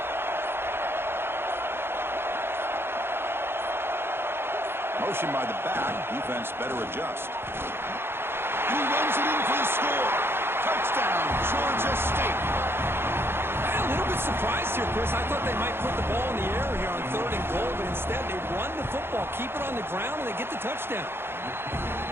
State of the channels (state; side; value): late; left; 0.11 ms